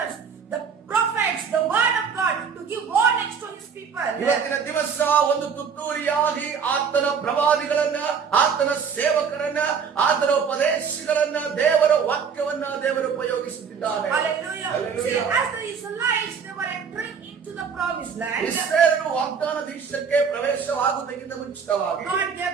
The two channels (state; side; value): quieter; left; 6.4 dB